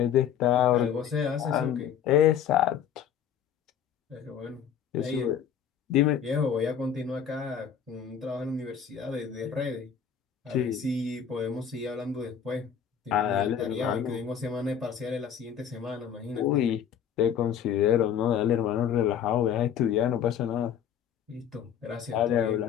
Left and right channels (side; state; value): right; quieter; 8.4 dB